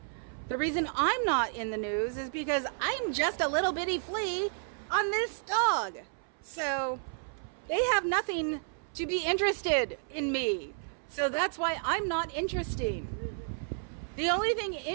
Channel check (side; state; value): left; silent; 57 dB below the other